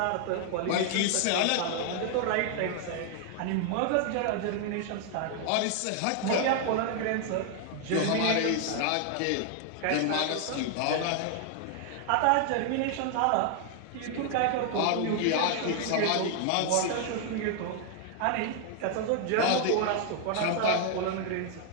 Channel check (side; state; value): both; different; correlation 0.00